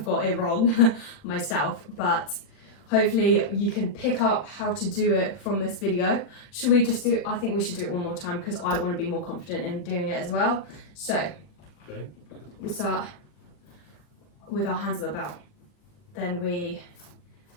got it wrong myself, but hopefully you can pick up how to do it from this video. Should we just do it? I think we should do it one more time because I want to be more confident in doing it as well. So Okay. we start with our hands at the belt. Then we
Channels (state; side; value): late; right; 40 ms